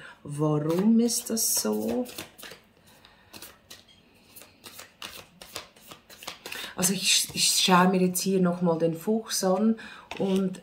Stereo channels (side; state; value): both; identical; correlation 1.00